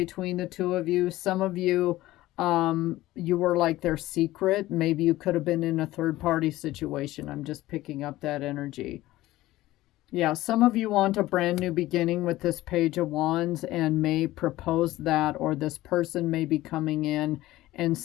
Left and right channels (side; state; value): right; quieter; 16.6 dB